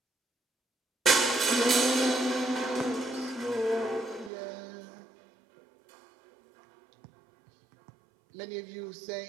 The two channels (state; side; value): drops out; left; at 4.3 s